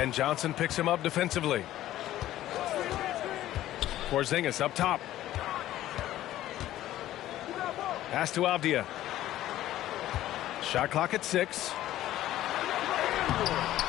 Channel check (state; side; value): quieter; right; 13.9 dB